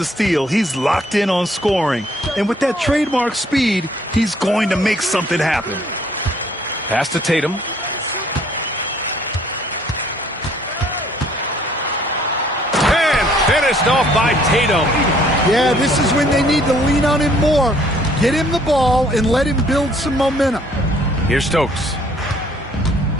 steal, he's locked in on scoring. And with that trademark speed, he's going to make something happen. Pass to Tatum. And finished off by Tatum. Yeah, this is when they need to lean on him more. Get him the ball and let him build some momentum. Here's Stokes.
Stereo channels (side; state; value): both; normal; correlation 0.61